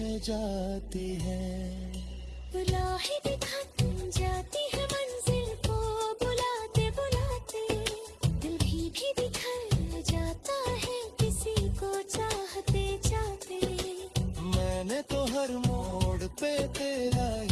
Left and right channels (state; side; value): identical; both; correlation 1.00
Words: जाती है। राहें भी थक जाती है मंजिल को बुलाते बुलाते, दिल भी बिखर जाता है किसी को चाहते चाहते। मैंने तो हर मोड़ पे तेरा